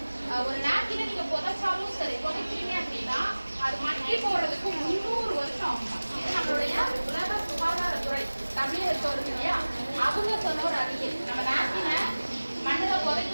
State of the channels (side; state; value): both; inverted; correlation -1.00